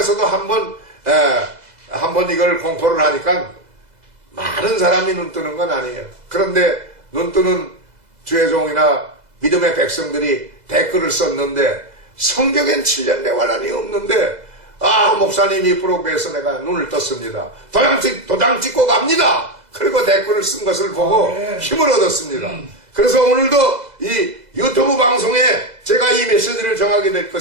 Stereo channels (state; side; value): late; left; 2.0 ms